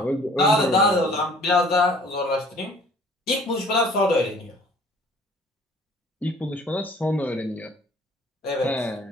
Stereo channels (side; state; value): both; normal; correlation 0.53